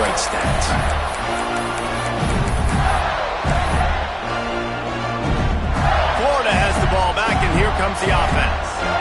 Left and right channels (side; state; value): both; identical; correlation 1.00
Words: stats. Florida has the ball back, and here comes the offense.